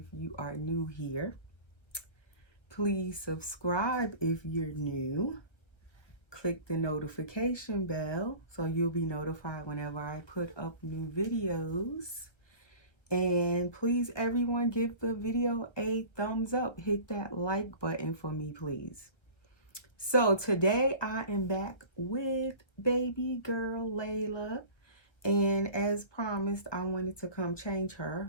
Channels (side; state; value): right; late; 1.5 ms